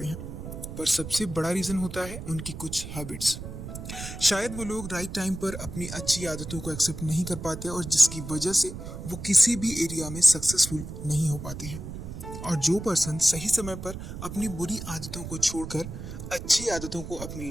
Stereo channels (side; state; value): right; noise; rumble, 9 dB below the sound